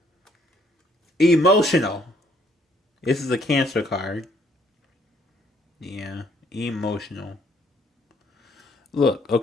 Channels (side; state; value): both; normal; correlation 0.66